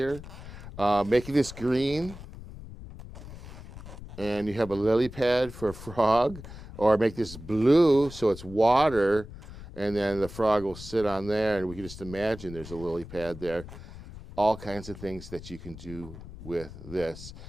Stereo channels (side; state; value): left; noise; rumble, 14 dB below the sound